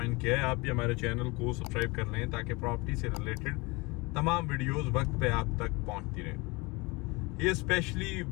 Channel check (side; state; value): right; quieter; 25.5 dB